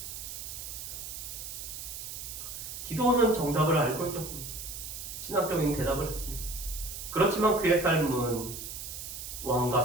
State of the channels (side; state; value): right; noise; hiss, 8 dB below the sound